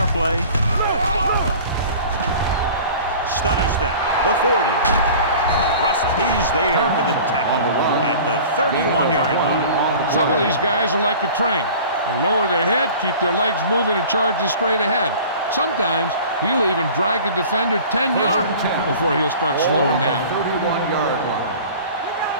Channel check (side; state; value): both; inverted; correlation -0.42